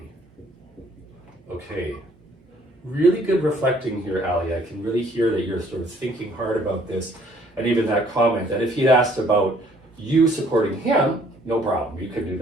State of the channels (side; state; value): both; normal; correlation 0.61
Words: Okay. Really good reflecting here, Ali. I can really hear that you're sort of thinking hard about this, and even that comment that if he'd asked about you supporting him, no problem, you could do